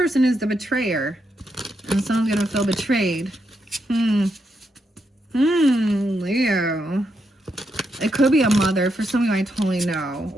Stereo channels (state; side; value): normal; both; correlation 0.81